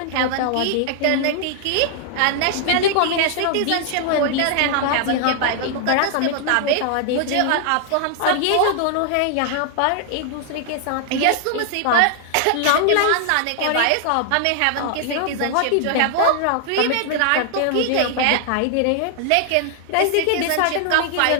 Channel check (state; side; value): different; both; correlation 0.00